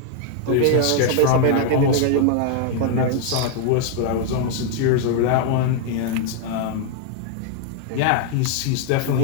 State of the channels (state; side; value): different; both; correlation 0.00